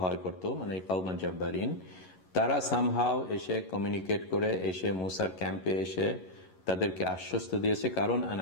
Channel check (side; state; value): right; late; 11 ms